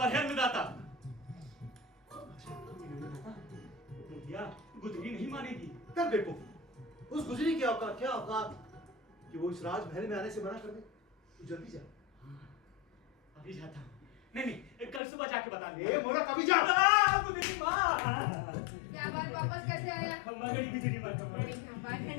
है अन्नदाता। गुजरी नहीं मानेगी। तब देखो, उस गुजरी की औकात क्या औकात कि वो इस राजमहल में आने से मना कर दे। तू जल्दी जा। अभी जाता हूँ। नहीं, कल सुबह जाके बता दे। ए मोरा कभी जा। गुजरी माँ। क्या बात, वापस कैसे आया? गुजरी माँ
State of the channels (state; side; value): drops out; right; at 15.0 s